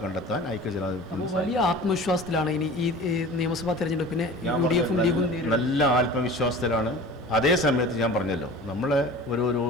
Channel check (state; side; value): normal; both; correlation 0.39